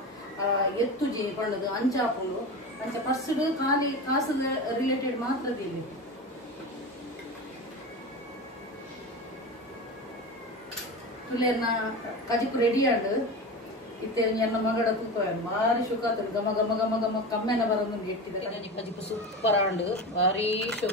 ಎತ್ತುಜಿ ಪಂಡದು ಅಂಚಾಪುಂಡು ಅಂಚ ಫಸ್ಟ್ ಖಾಲಿ ಕಾಸದ ರಿಲೇಟೆಡ್ ಮಾತ್ರ ದೀಲಿ ತುಲೇನ ಕಜಿಪು ರೆಡಿ ಆಂಡ್ ಇತ್ತೆ ಎನ್ನ ಮಗಡ ತೂಕ ಭಾರಿ ಶೋಕ ಆತನು ಗಮ ಗಮ ಗಮ ಗಮ ಕಮ್ಮೆನ ಬರೋದು ಇಟ್ಟಿದ್ದಾರೆ ಕಜಿಪು ಸೂಪರ್ ಆಂಡ್ ಭಾರಿ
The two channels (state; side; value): normal; both; correlation 0.26